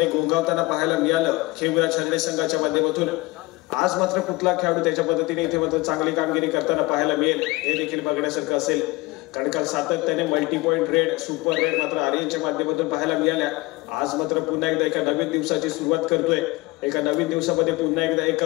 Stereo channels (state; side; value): quieter; right; 22.1 dB